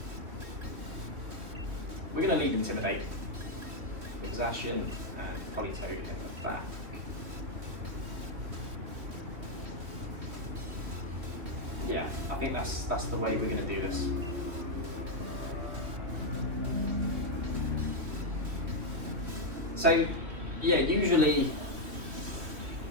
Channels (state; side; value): late; left; 3.1 ms